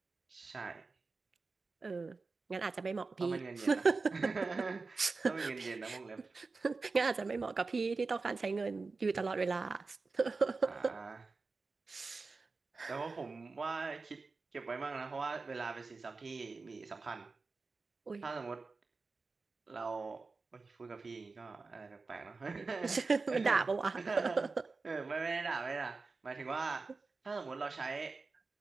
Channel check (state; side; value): quieter; left; 4.1 dB